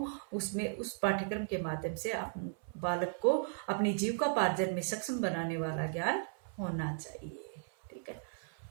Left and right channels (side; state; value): left; silent; 54 dB below the other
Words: उसमें उस पाठ्यक्रम के माध्यम से बालक को अपनी जीविकोपार्जन में सक्षम बनाने वाला ज्ञान होना चाहिए। ठीक है,